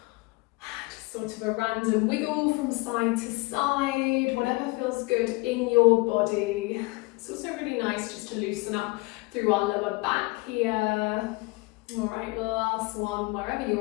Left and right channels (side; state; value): right; quieter; 24.5 dB